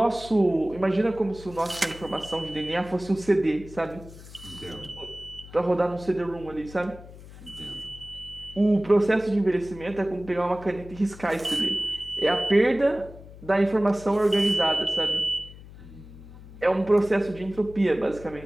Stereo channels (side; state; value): left; noise; hum, 17 dB below the sound